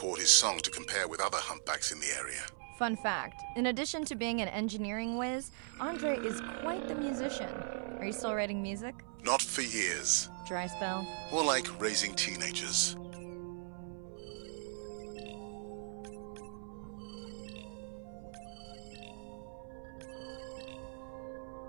his song to compare with other humpbacks in the area. Fun fact, in addition to being an engineering whiz, Andre is quite the musician. Are you still writing music? Not for years. Dry spell? More like raising teenagers.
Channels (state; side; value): silent; left; 52 dB below the other